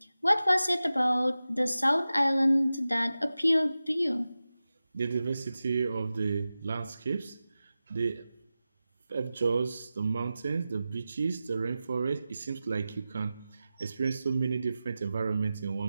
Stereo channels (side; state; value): both; inverted; correlation -0.94